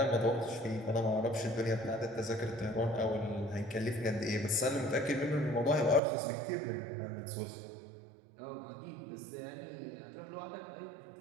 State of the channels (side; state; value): left; drops out; at 6.0 s